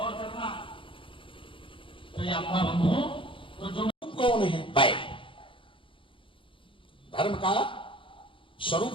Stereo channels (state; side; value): late; right; 0.25 ms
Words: करना तो ये अपना बंधु तो जो कौन है? बैल। धर्म का स्वरूप